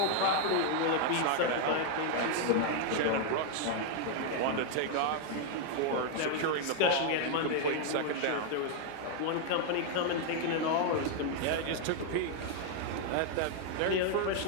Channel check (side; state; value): both; different; correlation 0.00